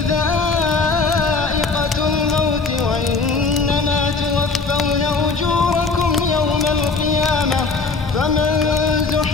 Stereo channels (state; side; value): quieter; right; 4.3 dB